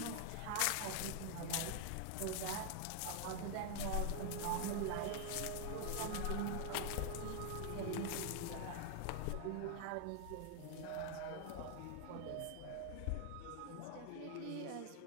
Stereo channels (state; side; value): different; both; correlation 0.00